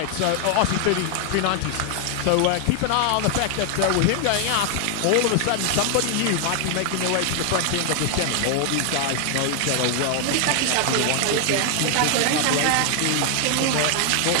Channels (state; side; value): different; both; correlation 0.00